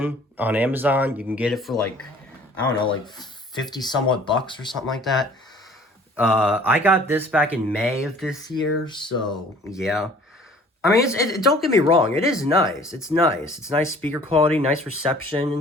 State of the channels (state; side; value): normal; both; correlation 0.52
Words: on Amazon. You can get it for like, I don't know, like 50 somewhat bucks or something like that. I got this back in May of this year, so yeah. I mean, don't get me wrong, it is nice. It's nice. It's nice speaker quality, nice reception